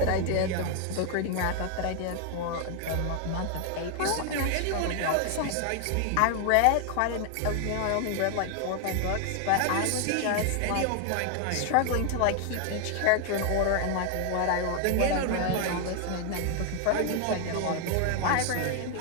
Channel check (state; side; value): different; both; correlation 0.00